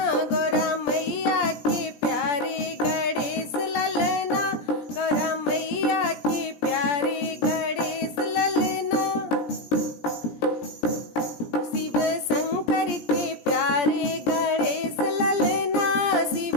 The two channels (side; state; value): right; late; 17 ms